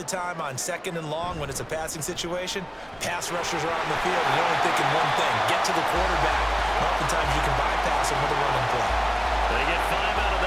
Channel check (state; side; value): identical; both; correlation 1.00